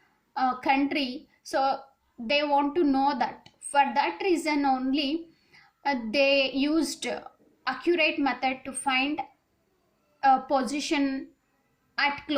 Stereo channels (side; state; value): both; identical; correlation 1.00